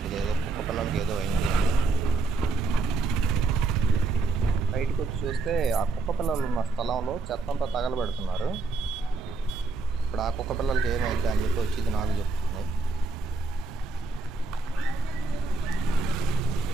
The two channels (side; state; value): left; quieter; 3.7 dB